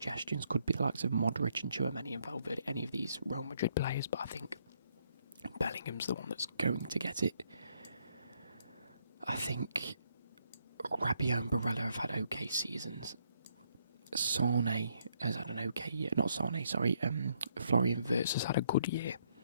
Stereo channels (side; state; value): both; inverted; correlation -0.73